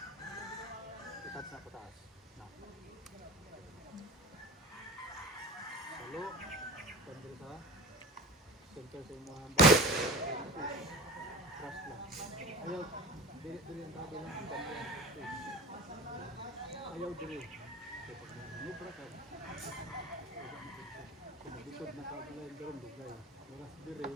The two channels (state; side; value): normal; both; correlation 0.35